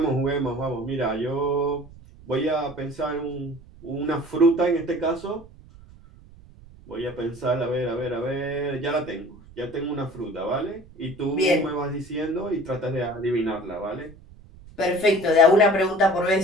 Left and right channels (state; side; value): noise; right; rumble, 21 dB below the sound